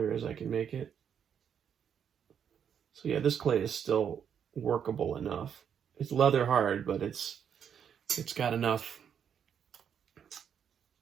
as I can make it. So yeah, this clay is still workable enough. It's leather hard, but it's got enough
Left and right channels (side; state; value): left; quieter; 8.1 dB